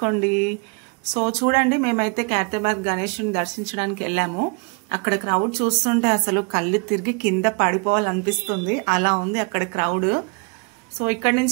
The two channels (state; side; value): quieter; left; 33.8 dB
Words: సో చూడండి, మేమైతే ఖైరతాబాద్ గణేశుని దర్శించడానికి వెళ్ళాము. అక్కడ క్రౌడ్ చూస్తుంటే అసలు కళ్ళు తిరిగి కింద పడిపోవాలనిపిస్తుంది, అలా ఉంది అక్కడ క్రౌడ్. సో ఇక్కడ